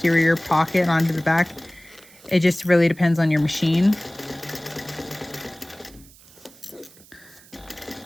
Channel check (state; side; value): noise; right; hiss, 24 dB below the sound